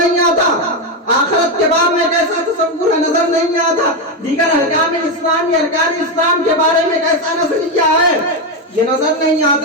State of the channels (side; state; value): both; normal; correlation 0.09